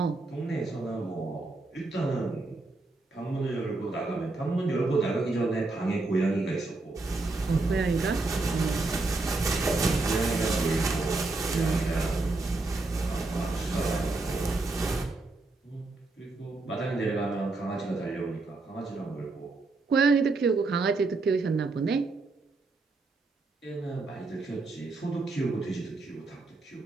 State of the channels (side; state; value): left; quieter; 3.4 dB